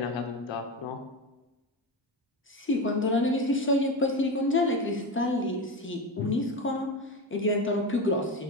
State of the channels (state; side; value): normal; both; correlation 0.20